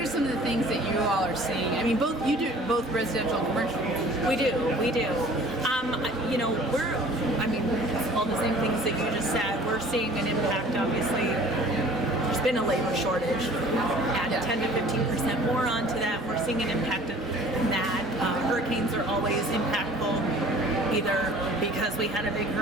some of the things that you all are seeing? I mean, you do both residential and commercial. We do. We're, all the same things that you just said, we're seeing an impact, obviously. There's been a labor shortage. Add 10 to 15% more onto that. We're seeing an impact of that. Hurricanes are always impactful, either because we had a big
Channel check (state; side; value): normal; both; correlation 0.48